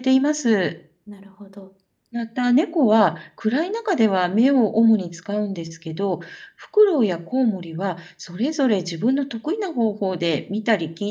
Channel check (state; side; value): identical; both; correlation 1.00